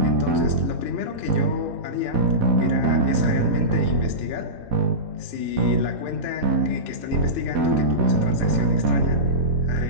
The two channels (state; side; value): late; left; 4.1 ms